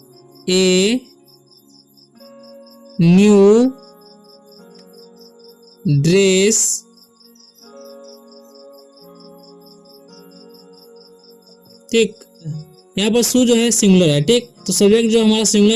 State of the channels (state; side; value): identical; both; correlation 1.00